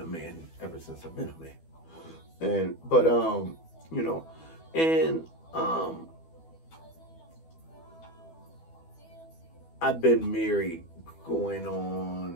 man ever since I've been a man. But you know, and I've been married going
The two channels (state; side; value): late; right; 12 ms